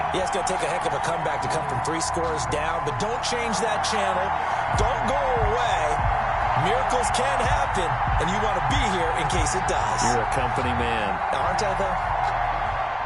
Yeah, it's going to take a heck of a comeback to come from 3 scores down, but don't change that channel. Don't go away. Miracles can happen, and you want to be here in case it does. You're a company man. Aren't I, though?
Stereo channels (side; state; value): both; identical; correlation 1.00